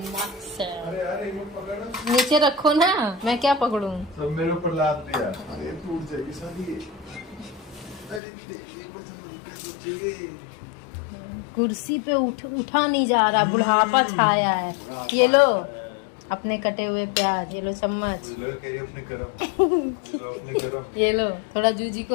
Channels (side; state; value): right; drops out; at 8.2 s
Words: से। नीचे रखो ना, मैं क्या पकड़ूं? सब मेरे ऊपर लाद दिया, अरे टूट जाएगी सारी। अरे कुर्सी पे उठा नहीं जा रहा, बुढ़ापा छाया है। ये लो अपने कटे हुए प्याज, ये लो चम्मच। ये लो थोड़ा जूजी